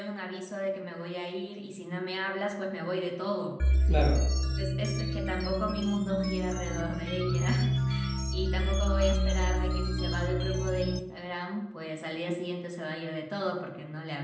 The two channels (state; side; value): identical; both; correlation 1.00